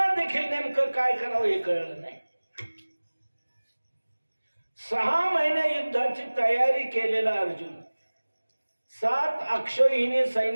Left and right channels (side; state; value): both; inverted; correlation -1.00